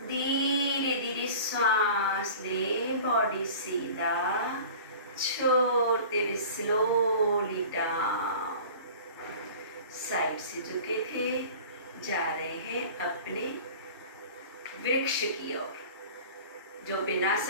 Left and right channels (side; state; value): both; inverted; correlation -0.41